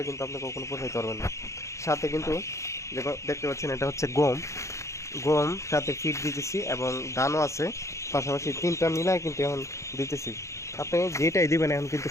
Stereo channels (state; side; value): late; right; 0.14 ms